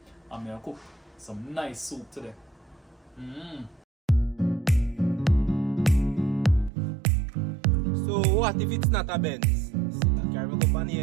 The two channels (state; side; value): drops out; left; at 6.7 s